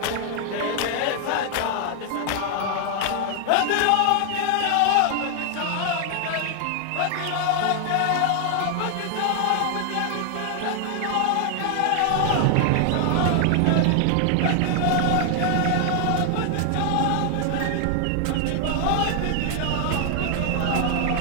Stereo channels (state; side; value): different; both; correlation 0.00